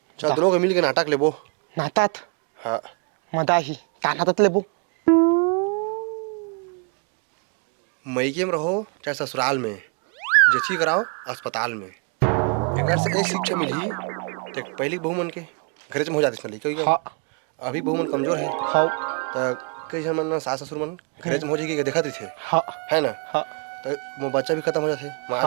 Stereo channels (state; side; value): quieter; left; 37.7 dB